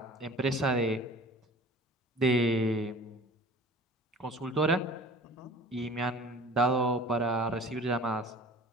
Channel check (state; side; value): normal; both; correlation 0.44